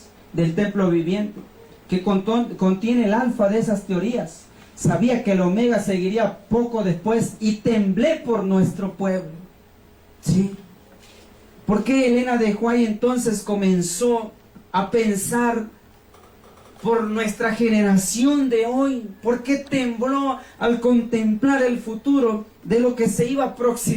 del templo viviente, que contiene el alfa de esas teorías. Sabía que el omega seguiría poco después y temblé por nuestro pueblo. ¿Sí? ¿Por qué Elena de White entonces comenzó a pensar por nuestra generación de hoy? ¿Por qué tembló al contemplar el futuro de lo que se iba a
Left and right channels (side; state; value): both; identical; correlation 1.00